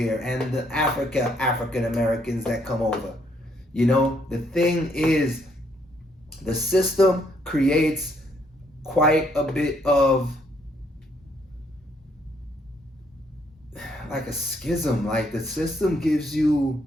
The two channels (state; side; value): normal; both; correlation 0.70